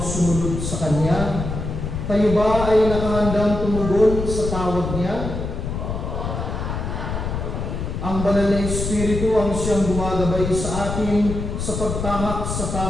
sumunod sa Kanya. Kayo ba ay nakahandang tumugon sa tawag Niya? Ang Banal na Espiritu ang siyang gumagabay sa atin sa pagtahak sa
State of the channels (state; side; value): noise; left; rumble, 4 dB below the sound